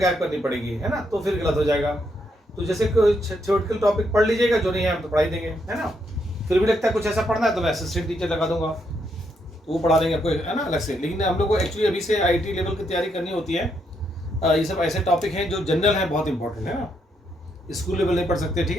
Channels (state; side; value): normal; both; correlation 0.77